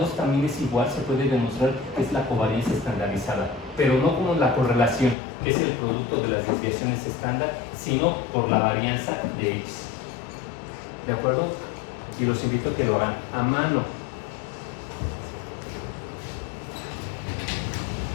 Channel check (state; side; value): drops out; right; at 5.2 s